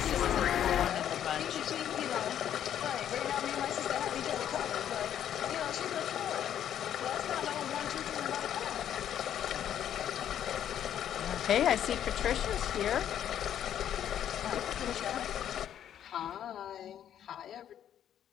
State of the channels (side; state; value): right; quieter; 10.2 dB